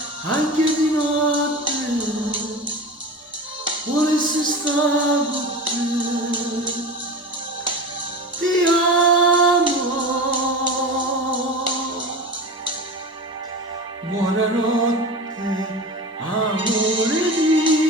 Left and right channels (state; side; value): normal; both; correlation 0.30